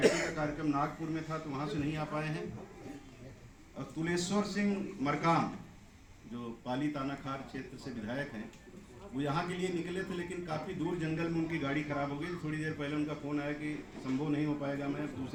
का कार्यक्रम नागपुर में था तो वहाँ से नहीं आ पाए हैं। और तुलेश्वर सिंह मरकाम, जो पाली तानाखार क्षेत्र से विधायक हैं, वो यहाँ के लिए निकले थे, लेकिन काफ़ी दूर जंगल में उनकी गाड़ी खराब हो गई। थोड़ी देर पहले उनका फ़ोन आया कि संभव नहीं हो पाएगा, मैं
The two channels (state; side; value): identical; both; correlation 1.00